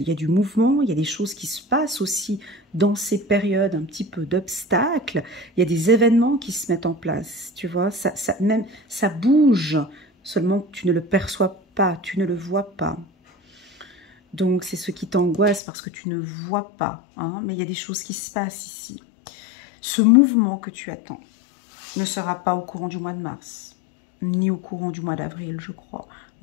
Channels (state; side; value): drops out; right; at 15.6 s